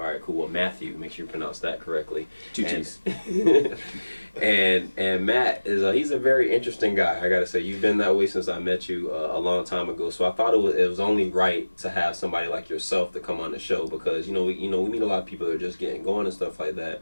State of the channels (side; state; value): both; inverted; correlation -1.00